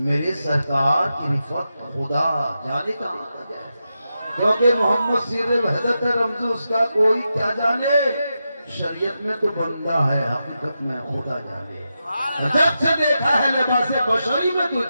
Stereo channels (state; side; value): inverted; both; correlation -0.88